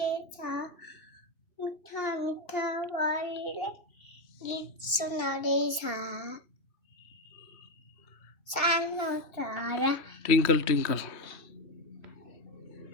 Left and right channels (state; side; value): late; right; 2.7 ms